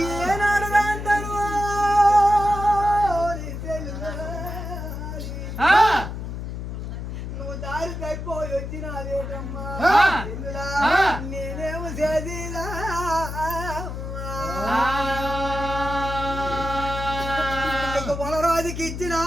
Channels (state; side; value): noise; left; hum, 6 dB below the sound